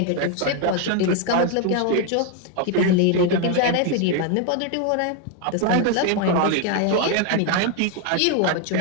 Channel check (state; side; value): different; both; correlation 0.01